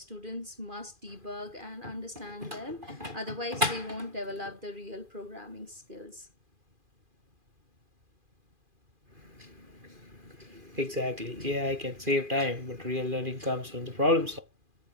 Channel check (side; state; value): left; late; 2.4 ms